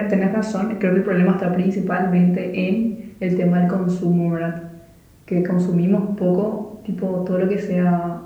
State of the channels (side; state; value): both; identical; correlation 1.00